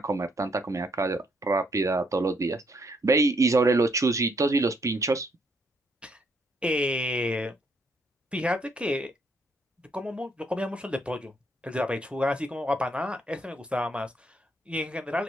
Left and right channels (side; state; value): both; normal; correlation 0.72